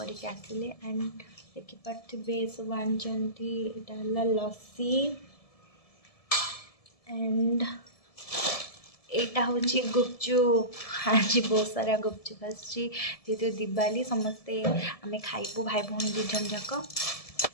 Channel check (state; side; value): late; right; 1.7 ms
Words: आसिले एंड देखिपे सब आनी लस्सी एंड यहाँ हूँ गुपचुप आज बहुत सारा गुपचुप आसती दिवाली समस्ते आम खाइबू भाई भौणी दु जन जाक